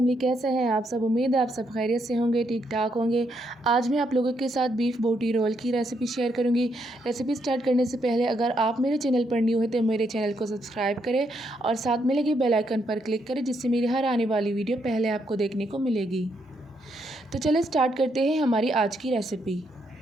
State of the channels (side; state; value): both; normal; correlation 0.77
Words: कैसे हैं आप सब। उम्मीद है आप सब खैरियत से होंगे, ठीक ठाक होंगे। आज मैं आप लोगों के साथ बीफ बोटी रोल की रेसिपी शेयर करूंगी। रेसिपी स्टार्ट करने से पहले अगर आप मेरे चैनल पर न्यू हैं तो मेरे चैनल को सब्सक्राइब करें और साथ में लगे बेल आइकन पर क्लिक करें, जिससे मेरी हर आने वाली वीडियो पहले आपको देखने को मिलेगी। तो चलिए स्टार्ट करते हैं हमारी आज की रेसिपी।